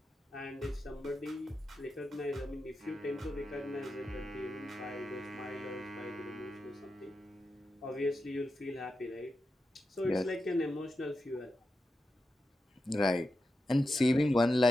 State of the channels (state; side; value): normal; both; correlation 0.89